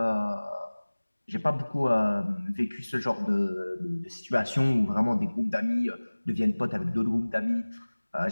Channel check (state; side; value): inverted; both; correlation -1.00